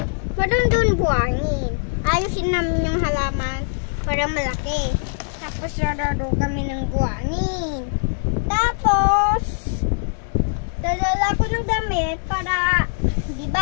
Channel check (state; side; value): silent; right; digital silence